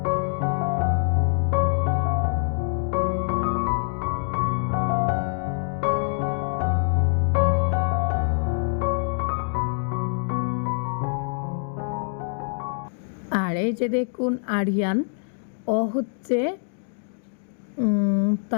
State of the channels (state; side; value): silent; right; digital silence